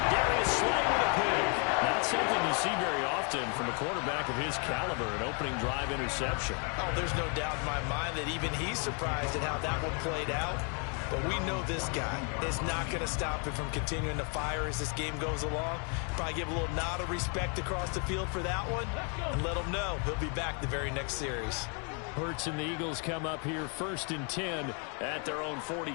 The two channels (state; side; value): quieter; right; 38.2 dB